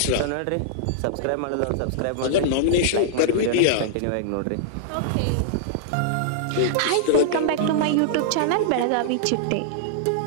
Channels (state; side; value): different; both; correlation -0.01